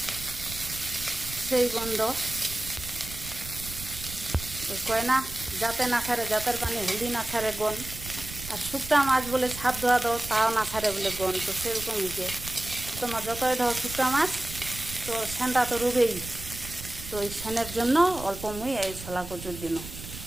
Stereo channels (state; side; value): noise; right; rumble, 12 dB below the sound